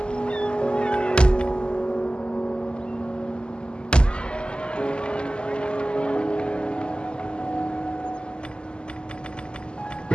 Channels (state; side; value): late; right; 0.049 ms